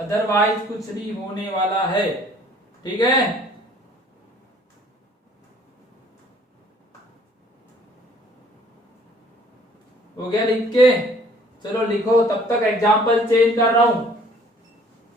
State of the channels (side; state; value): both; normal; correlation 0.56